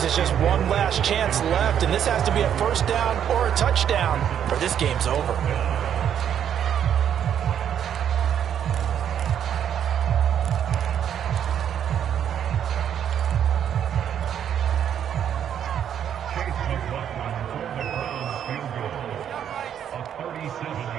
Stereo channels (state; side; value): quieter; left; 9.2 dB